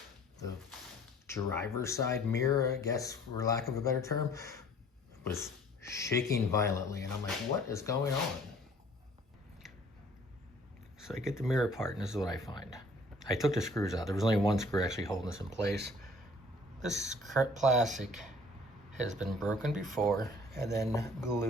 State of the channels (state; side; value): normal; both; correlation 0.54